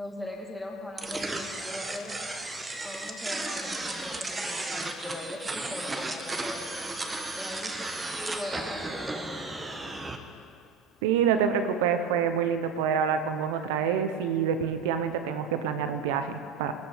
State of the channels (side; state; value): left; quieter; 5.2 dB